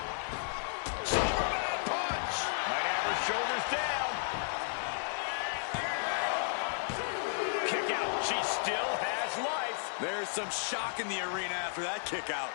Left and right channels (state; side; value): silent; right; digital silence